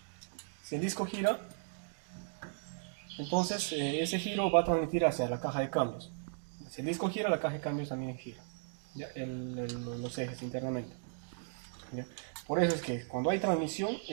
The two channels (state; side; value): silent; left; digital silence